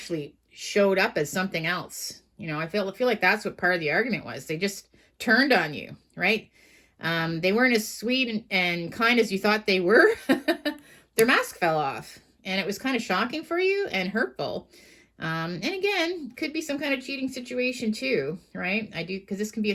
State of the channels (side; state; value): both; identical; correlation 1.00